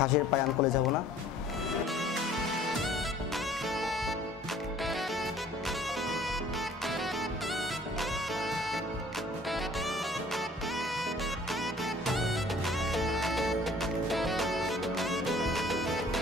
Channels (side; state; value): both; normal; correlation 0.53